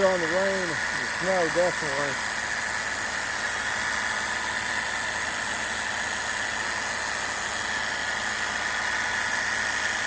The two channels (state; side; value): identical; both; correlation 1.00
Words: on the rain and snow, definitely.